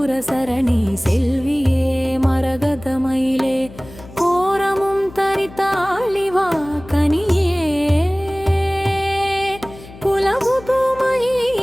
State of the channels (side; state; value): left; noise; hum, 18 dB below the sound